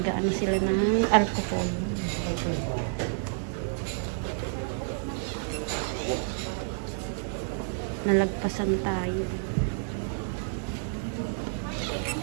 sila ng alcohol. Nalagpasan tayo.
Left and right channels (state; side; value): silent; left; digital silence